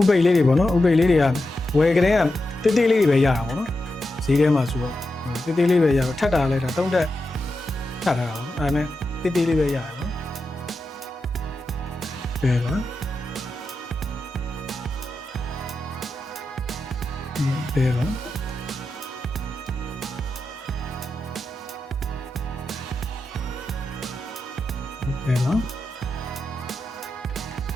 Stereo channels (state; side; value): normal; both; correlation 0.89